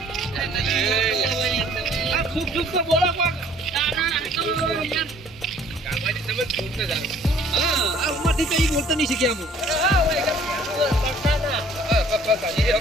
આ ખૂબ ખૂબ તો બોલો કોક આ ઉંમરથી તો ઈ બોલતા નહીં શીખ્યા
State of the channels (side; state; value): both; normal; correlation 0.57